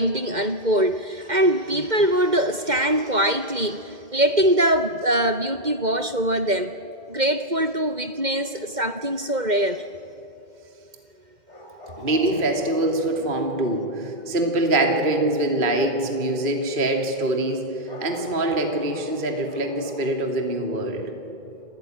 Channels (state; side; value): late; left; 2.1 ms